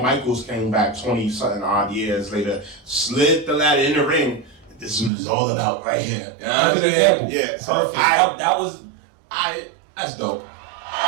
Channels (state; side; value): drops out; left; at 5.1 s